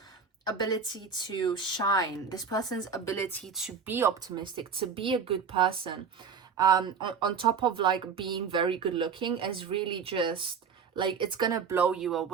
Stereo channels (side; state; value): left; quieter; 6.1 dB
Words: ability to shine, this person's ability to be optimistic, to be a good person, on top of like being very good looking, is really just like, it's gonna blow you